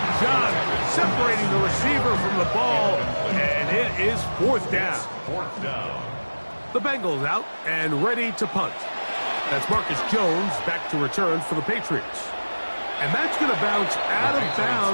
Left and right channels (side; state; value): both; inverted; correlation -1.00